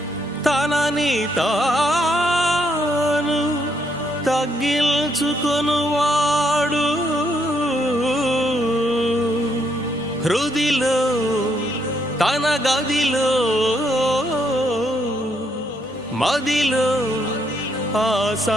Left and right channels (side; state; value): both; normal; correlation 0.74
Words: తనని తాను తగ్గించుకొనువాడు హృదిలో తన గదిలో మదిలో ఆ